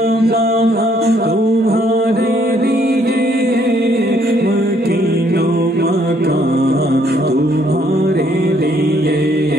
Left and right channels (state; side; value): normal; both; correlation 0.67